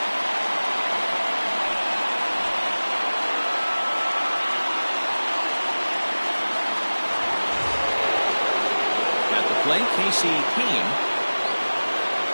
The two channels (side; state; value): both; inverted; correlation -1.00